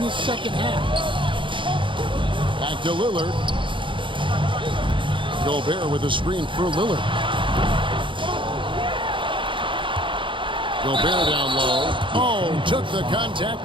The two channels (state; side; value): late; left; 0.24 ms